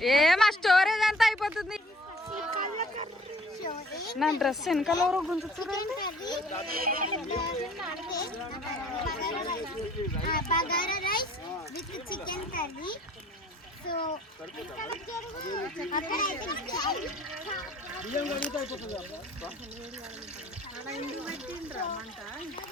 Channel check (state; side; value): normal; both; correlation 0.54